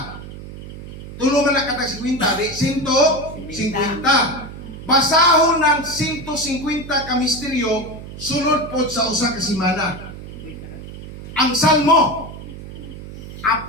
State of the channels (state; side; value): noise; right; hum, 12 dB below the sound